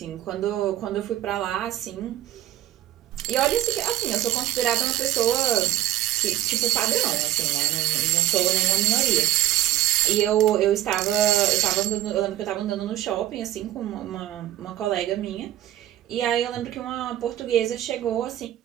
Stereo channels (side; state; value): left; quieter; 13.6 dB